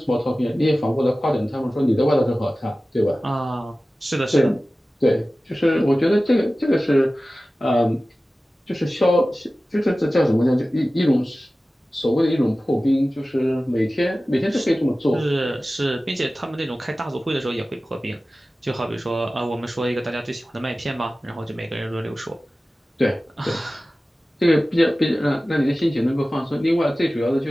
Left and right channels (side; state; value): both; normal; correlation 0.96